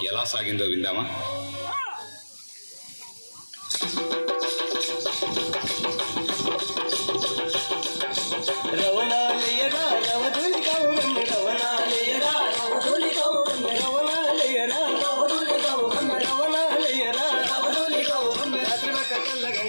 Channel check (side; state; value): both; inverted; correlation -1.00